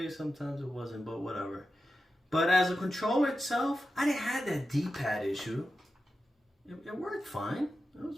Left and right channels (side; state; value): both; normal; correlation 0.91